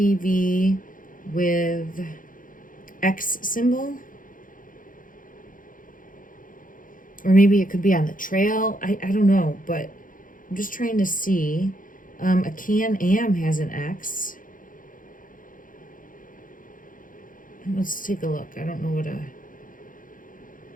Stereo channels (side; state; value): right; late; 0.39 ms